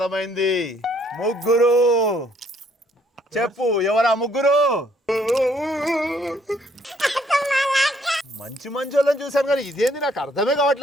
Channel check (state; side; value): normal; both; correlation 0.66